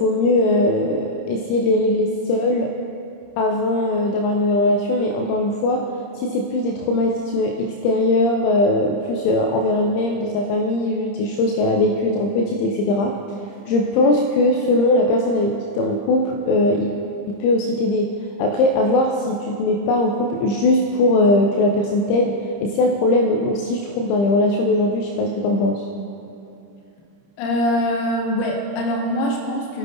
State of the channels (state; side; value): late; right; 30 ms